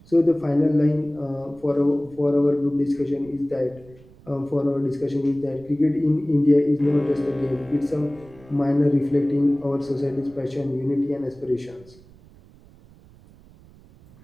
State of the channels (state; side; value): noise; right; rumble, 24 dB below the sound